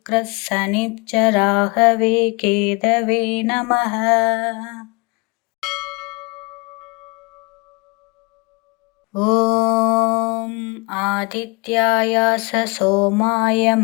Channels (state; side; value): quieter; right; 29.1 dB